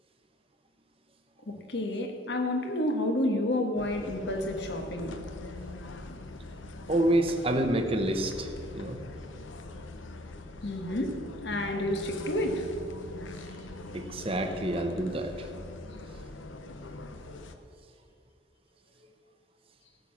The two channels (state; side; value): normal; both; correlation 0.55